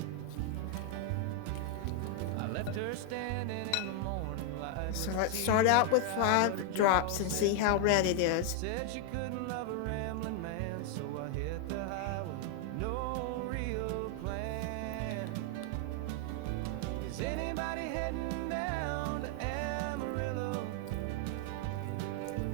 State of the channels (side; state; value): both; different; correlation 0.00